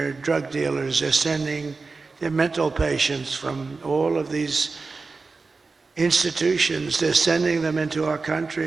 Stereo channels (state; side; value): quieter; left; 4.1 dB